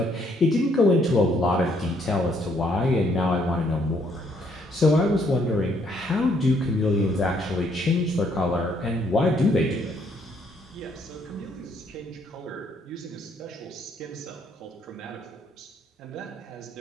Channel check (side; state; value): both; normal; correlation 0.69